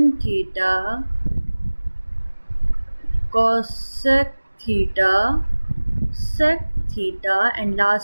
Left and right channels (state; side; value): inverted; both; correlation -1.00